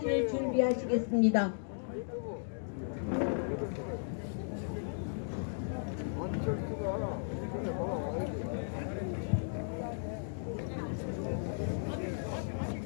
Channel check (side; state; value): right; silent; digital silence